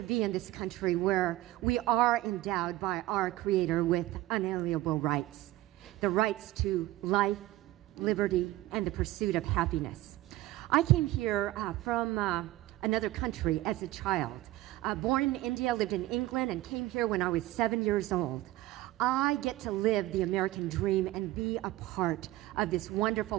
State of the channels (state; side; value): quieter; left; 16.7 dB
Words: be in this country where we are endowed by our Creator with unalienable rights. The rights to life, liberty, and the pursuit of happiness. I came here from another country as a child. Born in India, lived in England, and came here when I was 7 years old. I get to live the American dream and be a part of this wonderful